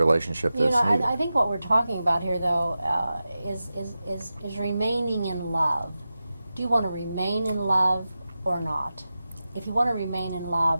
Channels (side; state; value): both; inverted; correlation -0.93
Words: that's needed. I think what we're talking about here, though, is remaining in love. Do you want to remain in love or not? If you want to remain in